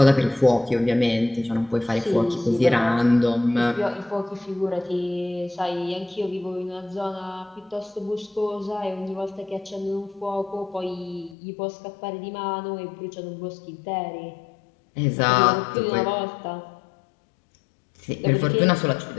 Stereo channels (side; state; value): right; drops out; at 11.4 s